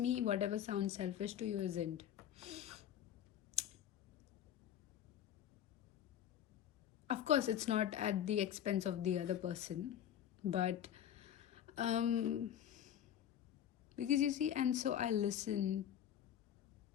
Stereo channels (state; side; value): quieter; right; 10.2 dB